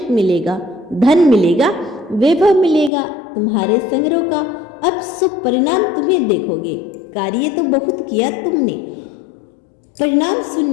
मिलेगा, धन मिलेगा, वैभव मिलेगा, तुम्हारे संग्रह का अब शुभ परिणाम तुम्हें देखोगे। कार्य तो बहुत किया तुमने, परिणाम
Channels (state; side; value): drops out; right; at 2.9 s